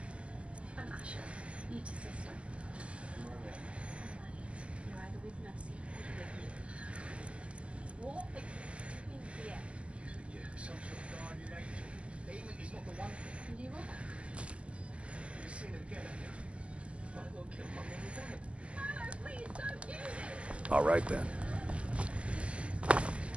All right, then.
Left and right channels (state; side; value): late; left; 0.061 ms